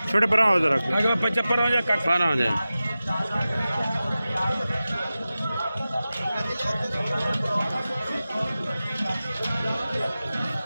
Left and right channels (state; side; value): inverted; both; correlation -0.95